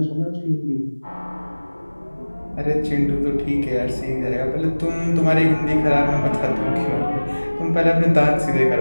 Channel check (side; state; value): both; inverted; correlation -1.00